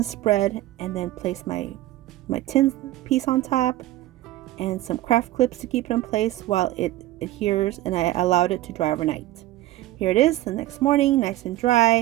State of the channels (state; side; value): quieter; left; 15.6 dB